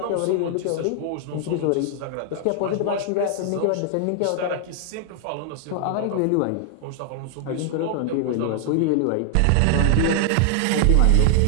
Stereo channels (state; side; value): different; both; correlation 0.00